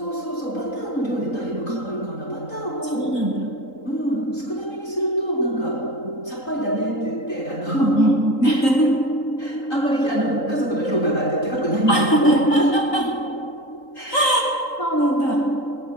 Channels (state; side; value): late; right; 3.8 ms